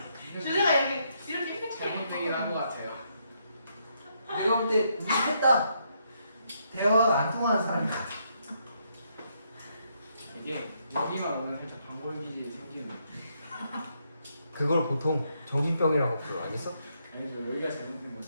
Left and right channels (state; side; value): inverted; both; correlation -0.76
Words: 주제가 이렇게 잘못 얘기를 것 같아요. 내가 볼 때 우리 했다. 대화가 안 통하는 사람이 같아. 이게 여기만 오면 살짝 방골 기질이 생기는. 그걸 보통 정신병이라고 불러. 알겠어? 아니죠, 여기가 잘못된